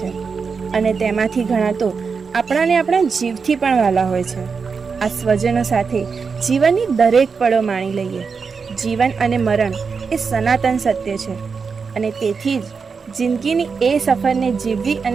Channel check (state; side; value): quieter; left; 5.3 dB